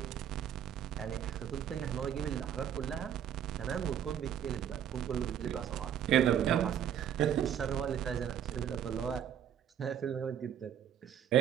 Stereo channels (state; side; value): quieter; left; 9.5 dB